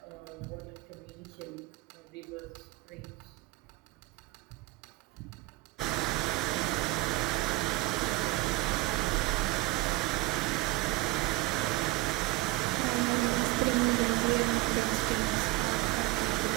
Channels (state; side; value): quieter; left; 20.0 dB